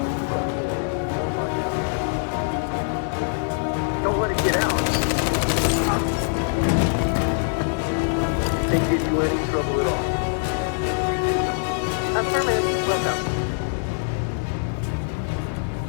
Don't let it get out. They give you any trouble at all. Affirmative. Welcome.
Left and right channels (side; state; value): right; silent; digital silence